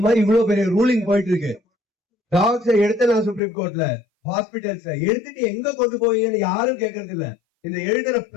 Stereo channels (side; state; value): right; drops out; at 3.4 s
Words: மாதிரி இவ்வளவு பெரிய ரூலிங் போயிட்டு இருக்கு. டாக்ஸ் எடுத்தலாம் சுப்ரீம் கோர்ட்ல, ஹாஸ்பிட்டல்ஸ்ல எடுத்துட்டு எங்க கொண்டு போவீங்கன்னு யாரும் கேட்கறது இல்ல. இந்த எழுதுற